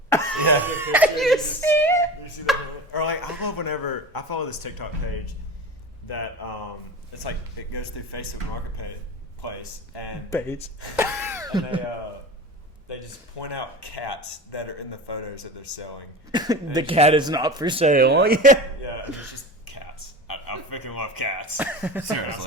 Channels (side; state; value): both; normal; correlation 0.31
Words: You see it? You see that? Or like, I love whenever I follow this TikTok page that it's like it goes through Facebook Marketplace and Page. they just point out cats that are in the photos that they're selling. The cat is not for sale. Yeah. Yeah, and it's just cats. I freaking love cats.